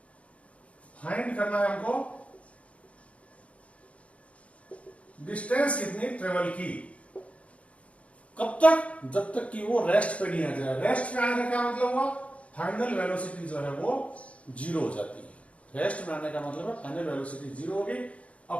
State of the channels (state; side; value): late; right; 0.064 ms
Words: फाइंड करना है हमको डिस्टेंस कितनी ट्रेवल की, कब तक, जब तक कि वो रेस्ट पे नहीं आ जाए। रेस्ट पे आने का क्या मतलब हुआ, फाइनल वेलोसिटी जो है वो जीरो हो जाती है। रेस्ट में आने का मतलब है फाइनल वेलोसिटी जीरो हो गई।